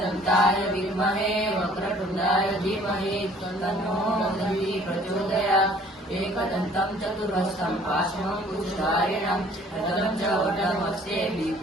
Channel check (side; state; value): both; normal; correlation 0.55